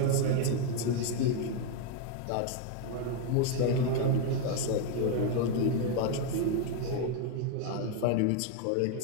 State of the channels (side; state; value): both; different; correlation 0.01